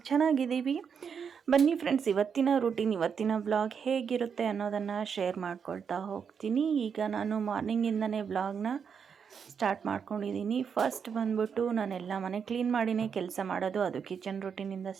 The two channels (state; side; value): quieter; left; 6.8 dB